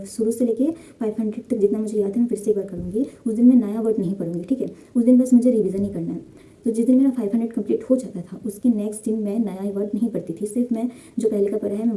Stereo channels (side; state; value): both; identical; correlation 1.00